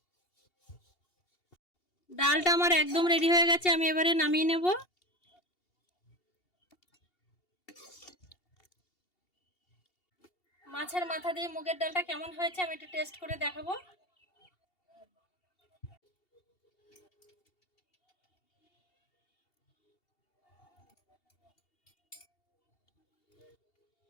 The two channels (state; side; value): late; right; 2.7 ms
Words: ডালটা আমার একদম রেডি হয়ে গেছে, আমি এবারে নামিয়ে নেব। মাছের মাথা দিয়ে মুগের ডালটা কেমন হয়েছে আমি একটু টেস্ট করে দেখাবো।